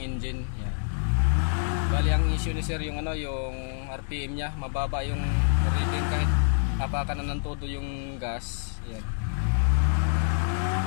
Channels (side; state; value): right; silent; digital silence